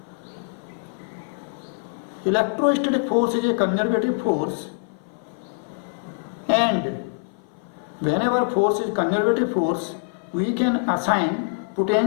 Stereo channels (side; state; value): right; silent; 56 dB below the other